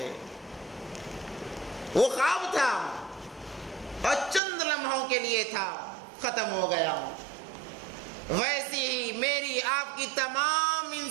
وہ خواب تھا اور چند لمحوں کے لیے تھا، ختم ہو گیا۔ ویسی ہی میری آپ کی تمام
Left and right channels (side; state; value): left; drops out; at 4.4 s